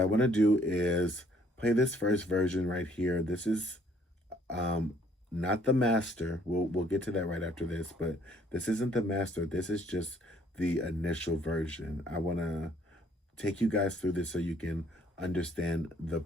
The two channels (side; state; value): both; normal; correlation 0.63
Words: want to do is play this first version right here. This is not the master. We'll get to that right after this, but this isn't the master. This is just the initial version. I want to take you guys through this so you can understand the